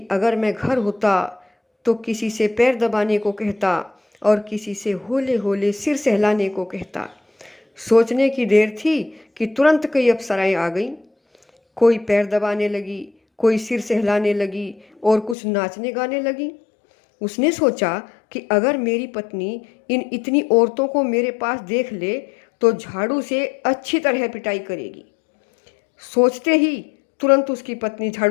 अगर मैं घर होता तो किसी से पैर दबाने को कहता और किसी से होले होले सिर सहलाने को कहता। सोचने की देर थी कि तुरंत कई अप्सराएं आ गईं। कोई पैर दबाने लगी, कोई सिर सहलाने लगी और कुछ नाचने गाने लगी। उसने सोचा कि अगर मेरी पत्नी इन इतनी औरतों को मेरे पास देख ले तो झाड़ू से अच्छी तरह पिटाई करेगी। सोचते ही तुरंत उसकी पत्नी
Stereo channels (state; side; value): drops out; right; at 15.4 s